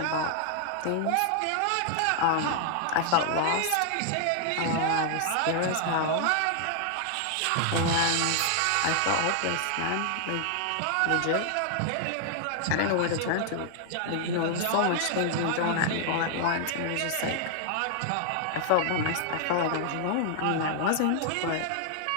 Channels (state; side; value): different; both; correlation 0.00